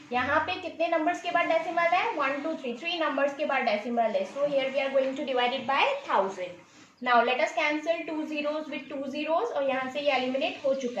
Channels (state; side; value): identical; both; correlation 1.00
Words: यहाँ पे कितने नंबर्स के बाद डेसिमल है? 1 2 3 3 नंबर्स के बाद डेसिमल है. So here we are going to divide it by 1000. Now let us cancel 2 zeros with 2 zeros और यहाँ से ये एलिमिनेट हो